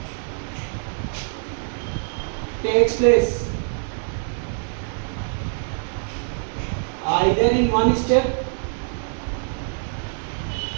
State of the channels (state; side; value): silent; left; digital silence